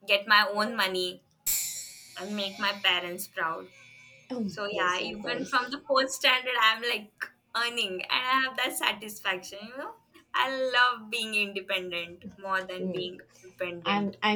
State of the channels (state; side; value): identical; both; correlation 1.00